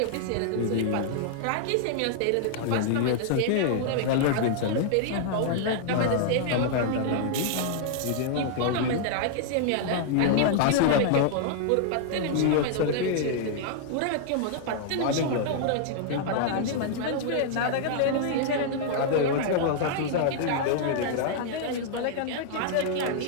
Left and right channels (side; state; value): both; different; correlation -0.01